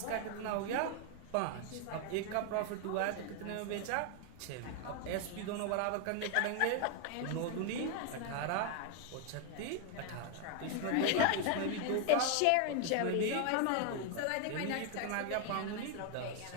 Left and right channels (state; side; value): different; both; correlation 0.01